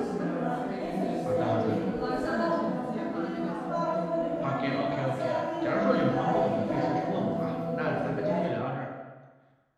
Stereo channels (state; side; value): identical; both; correlation 1.00